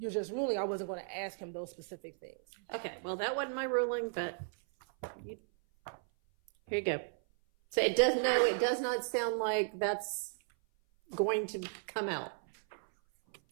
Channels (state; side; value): silent; left; 54 dB below the other